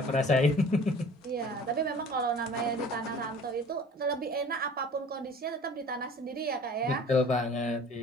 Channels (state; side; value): normal; both; correlation 0.46